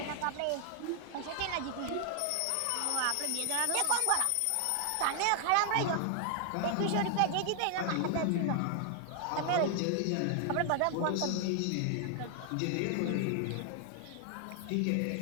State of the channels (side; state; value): both; different; correlation 0.00